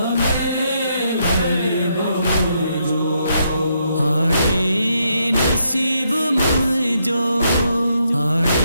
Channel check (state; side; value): inverted; both; correlation -0.77